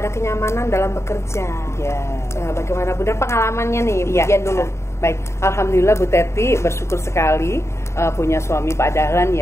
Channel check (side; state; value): right; late; 0.13 ms